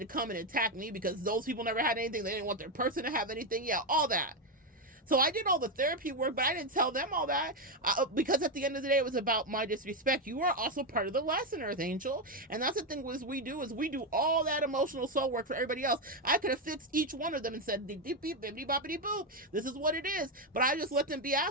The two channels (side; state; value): both; normal; correlation 0.07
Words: come and attack me because those people never had anything. They didn't want their person to have anything. Yeah, all that. So I did all the therapy work, but I didn't tell them all that because at the end of the day, it was about my disrespect. You are also part of the lesson, Earth Angel. And that's the thing we do all that emotional soul work for everybody else. I could have fixed each one of them and said, beep, beep, beep, bippity, boppity, boop. This is what it is. But I just let them be